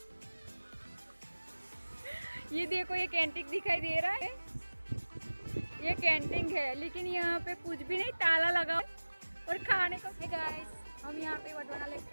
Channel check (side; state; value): both; inverted; correlation -1.00